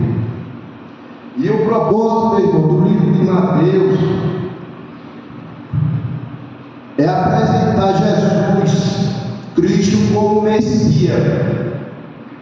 E o propósito, meu irmão, do livro de Mateus é apresentar Jesus Cristo como Messias,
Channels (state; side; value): identical; both; correlation 1.00